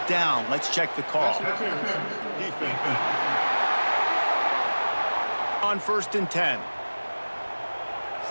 down. Let's check the call. Defense. On 1st and 10.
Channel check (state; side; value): inverted; both; correlation -1.00